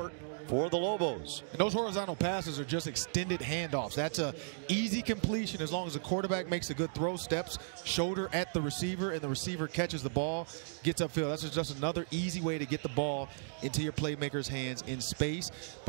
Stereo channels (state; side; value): silent; left; digital silence